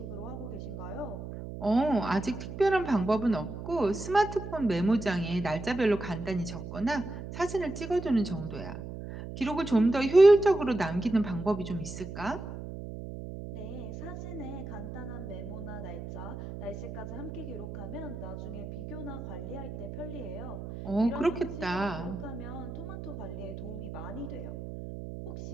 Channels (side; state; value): right; noise; hum, 9 dB below the sound